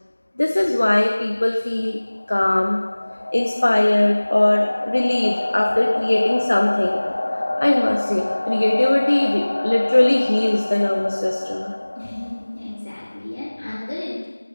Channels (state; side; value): inverted; both; correlation -1.00